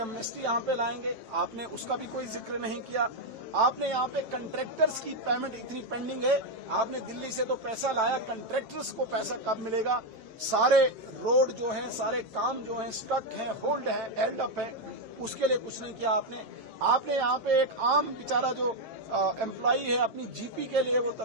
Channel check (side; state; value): left; late; 7.5 ms